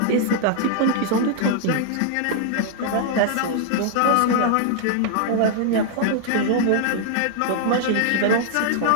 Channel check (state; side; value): different; both; correlation -0.01